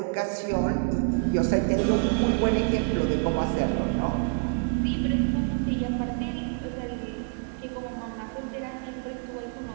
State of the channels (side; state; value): left; quieter; 38.0 dB